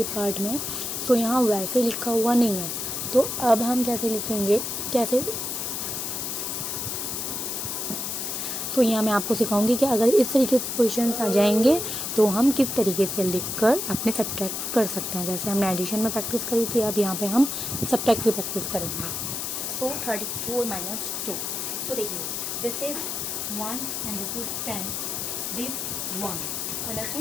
पार्ट में। सो यहाँ वैसे लिखा हुआ नहीं है, तो अब हम कैसे लिखेंगे, कैसे। तो यहाँ मैं आपको सिखाऊंगी कि अगर इस तरीके से क्वेश्चंस आ जाएंगे तो हम किस तरीके से लिखकर अपने सब्ट्रैक्ट कर सकते हैं। जैसे हमने एडिशन में प्रैक्टिस करी थी, अब यहाँ पे हम सब्ट्रैक्ट की प्रैक्टिस करेंगे। सो 34 माइनस 2, सो देखिए this is 1 and this is 10, this 1,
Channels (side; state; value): left; noise; hiss, 3 dB below the sound